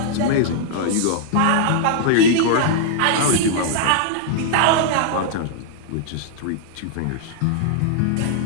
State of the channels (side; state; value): both; different; correlation -0.01